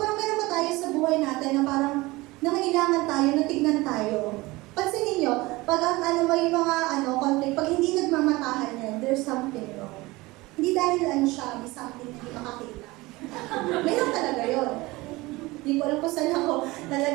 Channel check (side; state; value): left; quieter; 21.3 dB